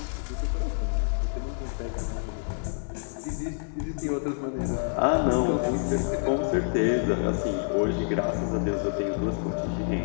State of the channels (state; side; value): silent; right; digital silence